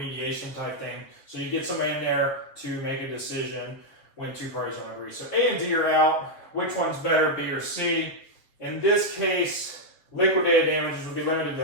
type thing. So you get somebody in there to make a decision when two parties don't agree. So A and D are out. Which one's better, B or C? In this case, liquidated damages would be limited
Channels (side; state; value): right; late; 7.2 ms